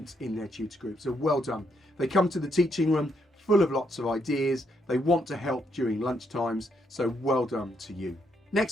in their tutor group. So well done. They come to the teaching room full of lots of ideas. They want to help during lunch times, so well done to you.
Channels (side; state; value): both; normal; correlation 0.76